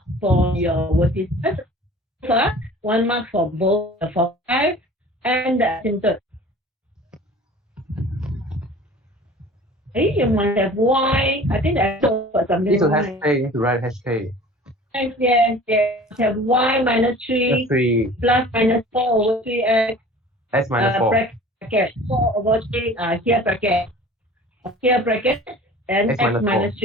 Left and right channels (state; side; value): normal; both; correlation 0.44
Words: for your vertices. 1 mark for both the foci and the asymptote. Hey, you must have Y. I think that's for something. Need to write HK. Yes. Have Y minus 3 plus minus 4 over 3x. S minus 4. Bracket 4 over 3. Here bracket. Here bracket and x minus